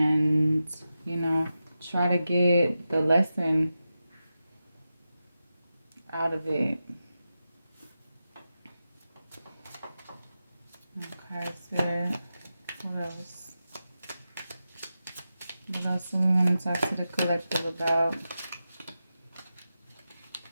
try to get the lesson out of it. Okay, sir. What else? What else do we want to talk to the collective about?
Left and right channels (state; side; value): inverted; both; correlation -0.91